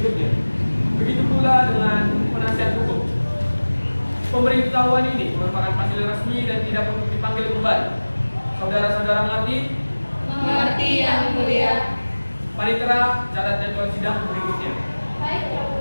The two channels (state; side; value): inverted; both; correlation -1.00